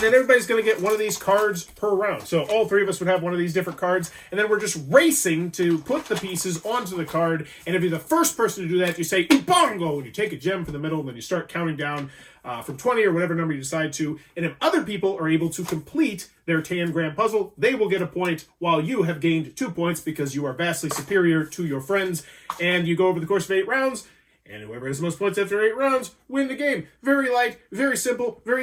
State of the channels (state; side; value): identical; both; correlation 1.00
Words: then everybody's going to get one of these cards per round. So all three of us would have one of these different cards. And then we're just racing to put the pieces onto the card. And if you're the first person to do that, you say, Ubongo! And you take a gem from the middle, and then you start counting down from 20 or whatever number you decide to. And if other people are able to complete their tangram puzzle, they will get a point, while you have gained 2 points because you are vastly superior to your friends. And you go over the course of 8 rounds. And whoever has the most points after 8 rounds, win the game. Very light, very simple,